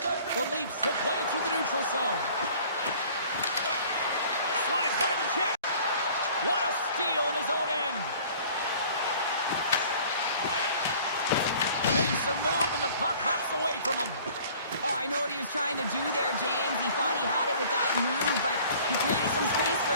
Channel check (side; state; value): both; inverted; correlation -0.50